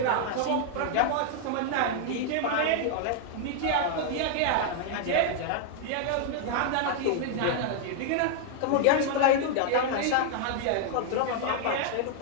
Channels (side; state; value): both; different; correlation 0.00